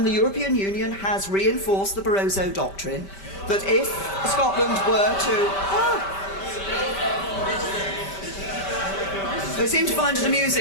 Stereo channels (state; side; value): late; right; 5.1 ms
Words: the European Union has reinforced the Barroso Doctrine, that if Scotland were to... They seem to find it